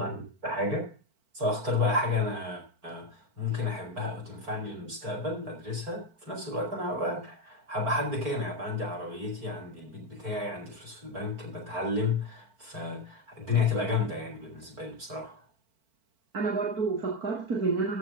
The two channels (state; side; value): late; left; 4.5 ms